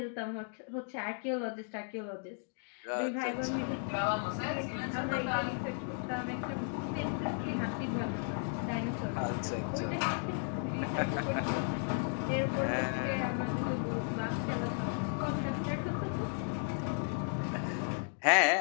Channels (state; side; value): silent; right; 55 dB below the other